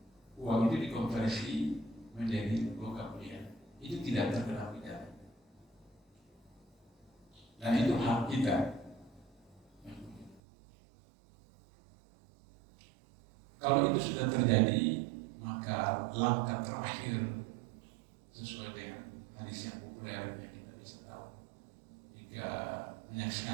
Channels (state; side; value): drops out; left; at 10.4 s